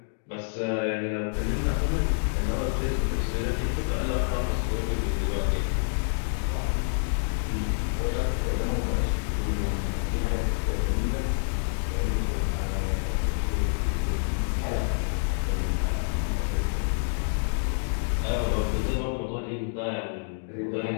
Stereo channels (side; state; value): right; silent; digital silence